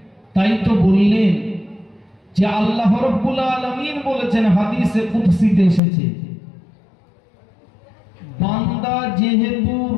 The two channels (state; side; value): drops out; right; at 5.8 s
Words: তাই তো বললেন যে আল্লাহ রাব্বুল আলামিন বলেছেন, হাদিসে কুদসিতে এসেছে, বান্দা যেহেতু